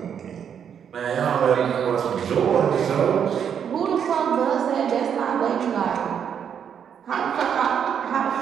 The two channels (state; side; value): quieter; left; 8.1 dB